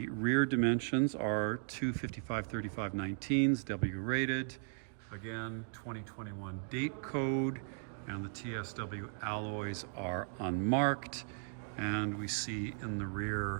rear dimensions are 255/35/19s, W rated. Again, 2021 date code, and the TSW alloys are unmarked. And we see in the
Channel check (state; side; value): silent; left; digital silence